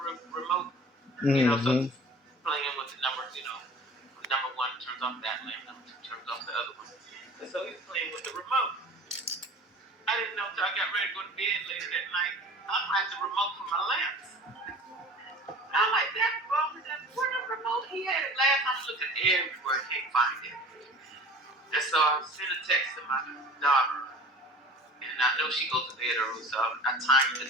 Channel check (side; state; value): both; normal; correlation 0.42